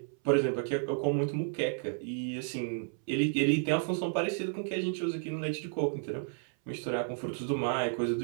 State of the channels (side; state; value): left; silent; 56 dB below the other